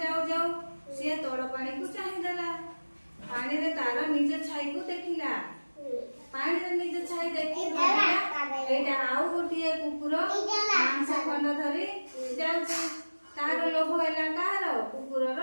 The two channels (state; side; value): inverted; both; correlation -1.00